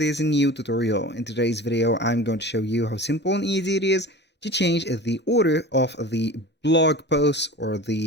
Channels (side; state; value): both; normal; correlation 0.36